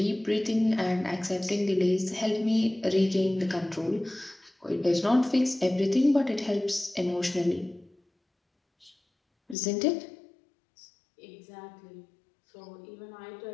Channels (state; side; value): drops out; right; at 9.6 s